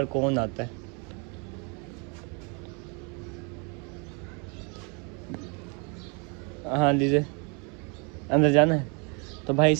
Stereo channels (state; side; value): quieter; left; 34.0 dB